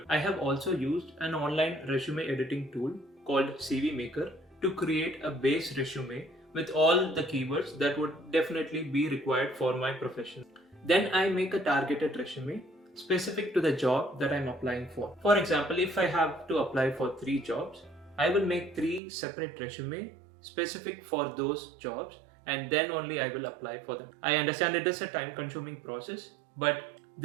I have also used an online resume editing tool called CV Maker to create a base resume with all the keywords that would definitely be required for my profession. Then I make a targeted resume specific to the job that I'm applying for. For example, if I have to apply for 3 jobs, I will make 3 separate resumes specific for those jobs and then only I will apply for them. I understand it is a time-consuming process, but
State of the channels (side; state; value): left; drops out; at 19.0 s